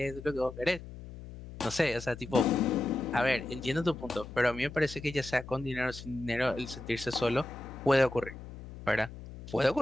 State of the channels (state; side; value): noise; left; hum, 13 dB below the sound